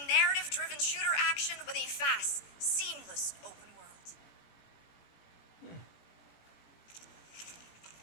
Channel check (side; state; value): right; late; 18 ms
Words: narrative-driven shooter action with a fast, seamless open world.